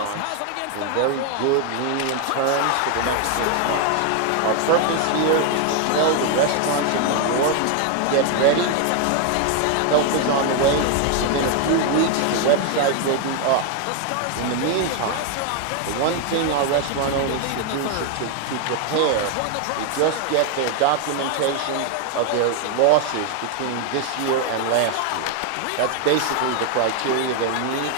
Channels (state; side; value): different; both; correlation 0.01